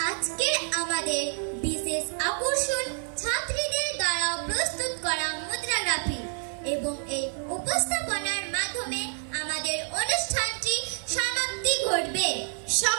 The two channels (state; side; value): silent; left; digital silence